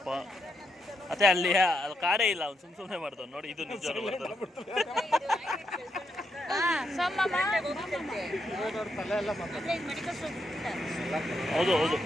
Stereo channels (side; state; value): both; normal; correlation 0.80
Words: ಅದೇ ಅಲ್ಲಿ ಕಾಡೇ ಇಲ್ಲ, ಅವ್ನು ಸುಮ್ಮನೆ ಮಾಡ್ತಾವ ನೋಡಿ. ಇದು ನಿಜ. ಹೌದು